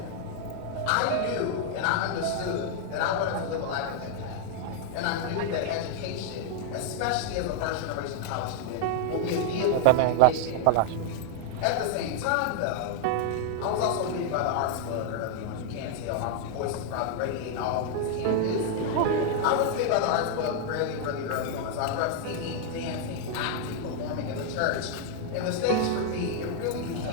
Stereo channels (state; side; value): different; both; correlation 0.00